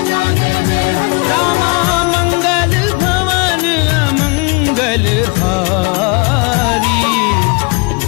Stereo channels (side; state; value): right; quieter; 31.2 dB